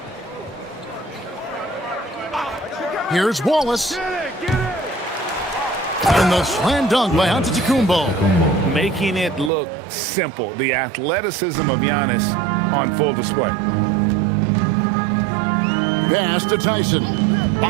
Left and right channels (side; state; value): left; drops out; at 9.5 s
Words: Here's Wallace. And the slam dunk by Antetokounmpo. Making it look simple. The athleticism of Giannis on full display. Pass to Tyson.